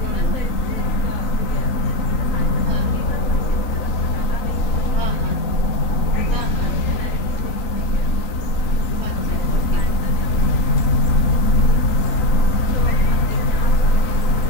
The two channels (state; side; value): late; right; 3.8 ms